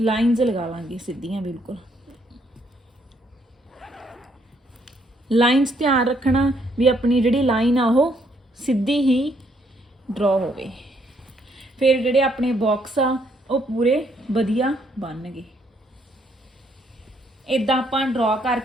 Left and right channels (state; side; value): normal; both; correlation 0.71